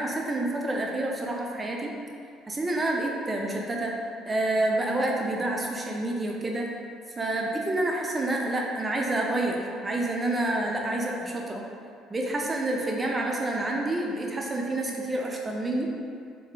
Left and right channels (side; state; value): both; normal; correlation 0.74